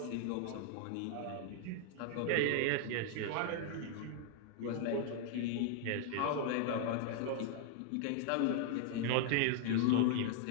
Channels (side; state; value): both; different; correlation 0.00